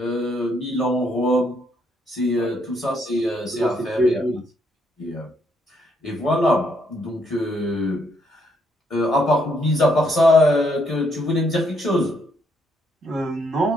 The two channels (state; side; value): normal; both; correlation 0.73